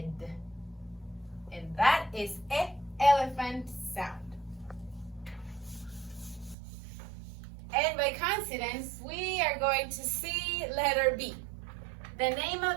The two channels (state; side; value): drops out; left; at 6.6 s